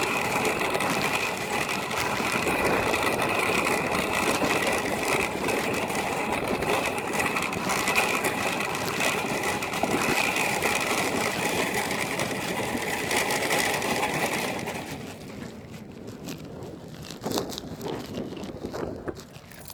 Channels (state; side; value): identical; both; correlation 1.00